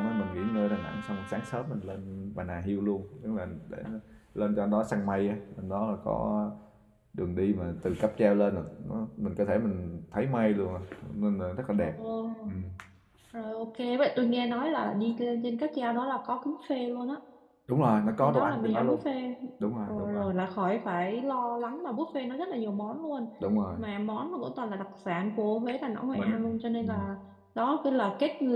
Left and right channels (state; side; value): identical; both; correlation 1.00